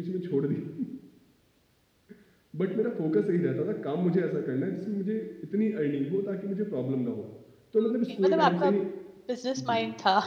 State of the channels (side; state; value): both; identical; correlation 1.00